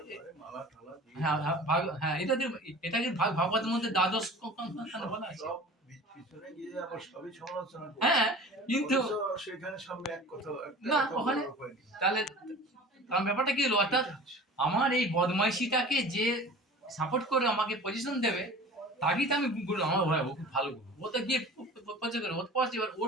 মালা টালা দিয়ে হ্যাঁ হ্যাঁ হ্যাঁ, এটাকে ভাগবতের মধ্যে দ্বাদশ বলা আছে। সব পিছনে গিয়ে আবার সবই সমালোচনা করে। হ্যাঁ, কিন্তু অথচ সেখানে সামনে এক কথা না, কথা ওখানে বলার উপায় নেই। তাহলে কারণ ব্যাপারটা কি হলো, অর্থাৎ আমার এই বদমাইশিটাকে যে সাপোর্ট করে আমাকে পজিশন দেবে, তাকেই তো আমি গুরু, আমার ভাই ও খুব ভালো গুরু, ও তো গিয়ে পরিচয় করে, ও তো পড়ছে, এবার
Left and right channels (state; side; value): normal; both; correlation 0.41